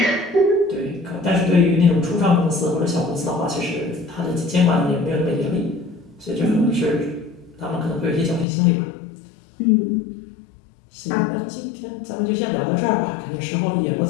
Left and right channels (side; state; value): right; drops out; at 8.5 s